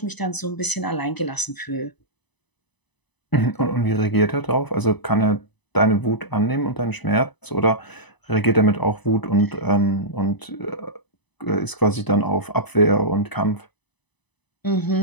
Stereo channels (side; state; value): right; late; 1.0 ms